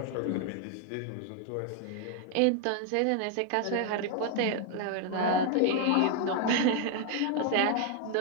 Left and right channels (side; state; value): both; different; correlation 0.00